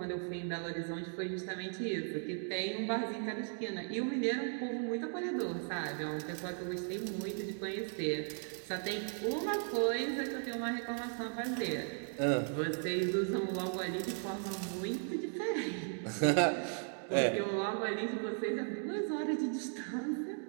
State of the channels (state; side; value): silent; left; 53 dB below the other